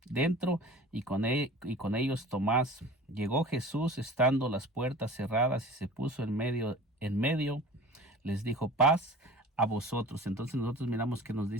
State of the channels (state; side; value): normal; both; correlation 0.40